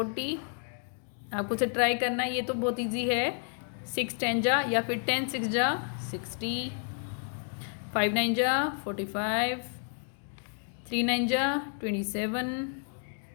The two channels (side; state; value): right; silent; 56 dB below the other